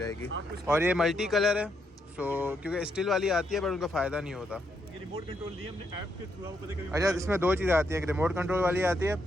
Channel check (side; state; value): both; normal; correlation 0.78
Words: और ये मल्टी कलर है, सो क्योंकि स्टील वाली आती है पर उनका फ़ायदा नहीं होता। ये रिमोट कंट्रोल दिए हमने ऐप के थ्रू, आपको पता है कभी। अच्छा इसमें 2 चीज़ें आती हैं, एक रिमोट कंट्रोल वाली आती है